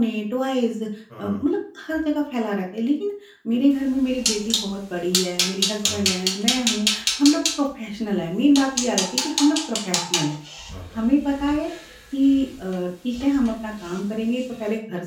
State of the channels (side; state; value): both; identical; correlation 1.00